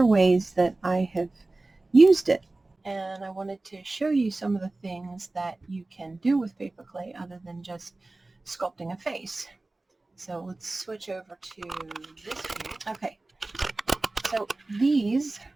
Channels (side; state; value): left; quieter; 3.1 dB